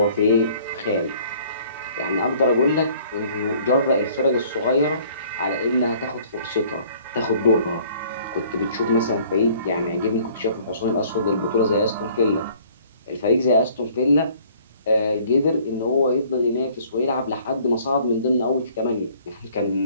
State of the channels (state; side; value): inverted; both; correlation -0.56